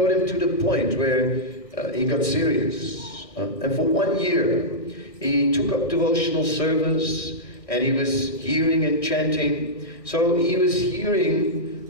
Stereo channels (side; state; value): right; late; 1.6 ms